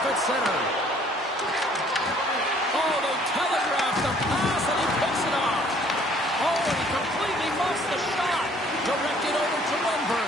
at center. Oh, they telegraph the pass, and he picks it off. Oh, and he completely muffs the shot. Directed over to Lundberg.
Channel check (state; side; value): normal; both; correlation 0.58